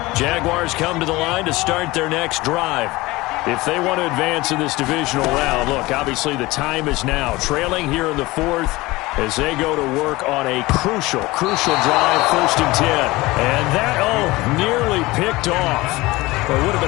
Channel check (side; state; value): right; quieter; 20.6 dB